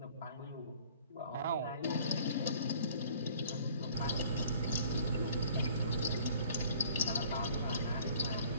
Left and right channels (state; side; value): inverted; both; correlation -0.53